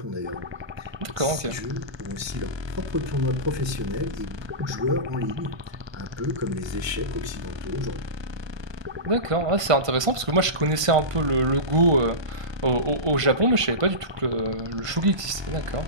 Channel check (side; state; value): left; late; 1.2 ms